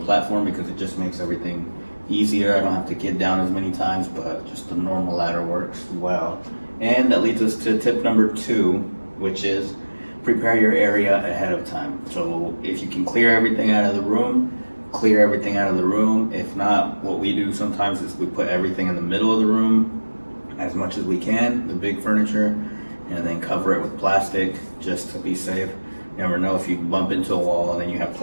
because it just makes everything easier. I don't have to get down as many times, but just the normal ladder works well. And that leads us to tip number 2, which is prepare your area ahead of time. So if you can clear everything out of the room, clear everything out of the room. If not, what we do sometimes is we put everything in the middle of the room as much as we can, the big furniture, and then cover it with plastic just to be safe. You never know if you bump into a wall and then you have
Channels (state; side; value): inverted; both; correlation -1.00